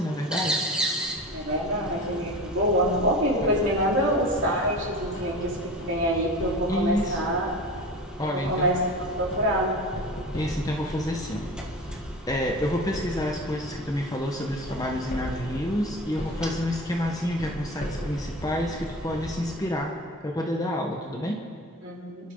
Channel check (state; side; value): normal; both; correlation 0.34